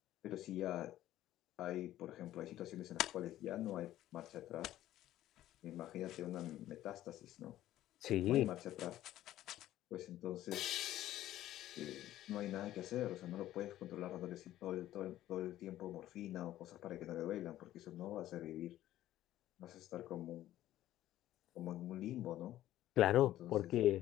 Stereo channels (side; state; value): right; quieter; 13.7 dB